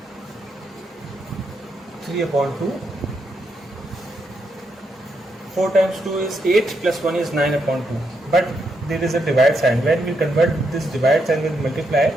3 upon 2. 4 times 2 is 8 plus 1 is 9 upon 2. But there is a divide sign. When we convert this divide sign with multiply,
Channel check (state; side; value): normal; both; correlation 0.80